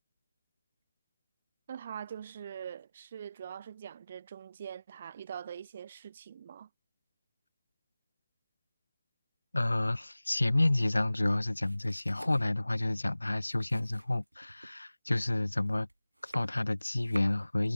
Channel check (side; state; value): both; inverted; correlation -0.99